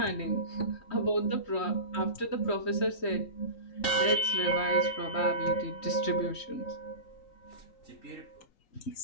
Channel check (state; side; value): late; right; 3.8 ms